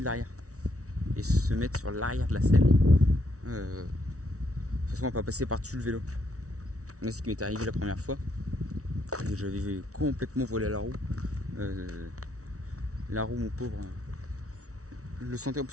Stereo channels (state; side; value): late; left; 0.65 ms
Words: l'arrière et se mettre sur l'arrière de la selle. De toute façon, on va pas passer par-dessus le vélo. Moi, c'est ce qui m'est arrivé la première fois. J'avais complètement volé à la roue. La roue, mon pauvre, je le sentais,